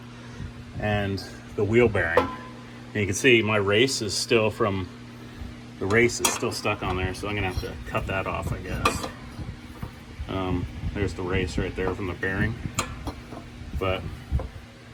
and the wheel bearing. And you can see my race is still stuck on there, so I'm gonna have to cut that off, I guess. There's the race right there from the bearing. But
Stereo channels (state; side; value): identical; both; correlation 1.00